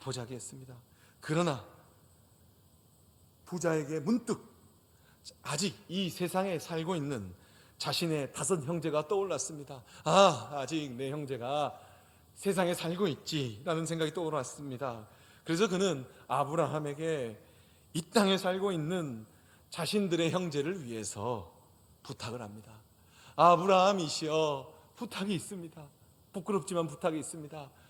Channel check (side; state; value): both; identical; correlation 1.00